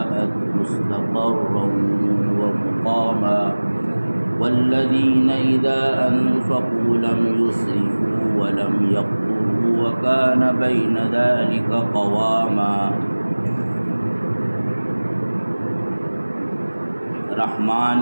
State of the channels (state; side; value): inverted; both; correlation -1.00